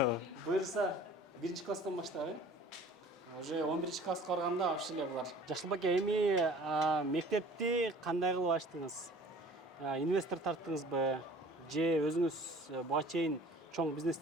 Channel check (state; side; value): normal; both; correlation 0.48